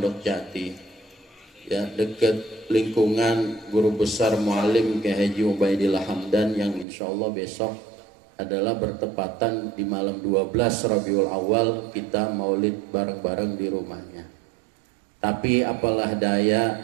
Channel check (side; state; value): left; drops out; at 6.9 s